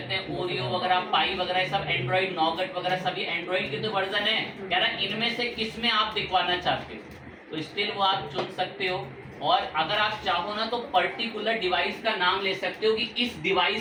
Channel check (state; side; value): identical; both; correlation 1.00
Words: हैं। ओरियो वगैरह, पाई वगैरह, ये सब एंड्रॉइड, नॉगट वगैरह सभी एंड्रॉइड के तो वर्जन है। कह रहा है इनमें से किस में आप दिखवाना चाहते हो, तो स्टिल वो आप चुन सकते हो। और अगर आप चाहो ना तो पर्टिकुलर डिवाइस का नाम ले सकते हो कि इस